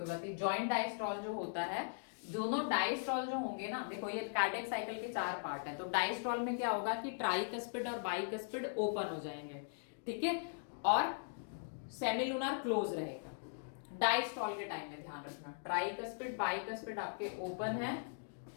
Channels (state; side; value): silent; right; digital silence